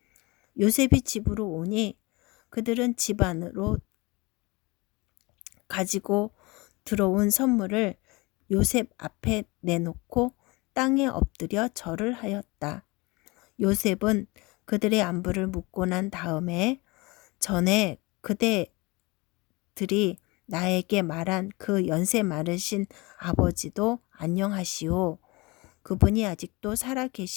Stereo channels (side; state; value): right; quieter; 24.0 dB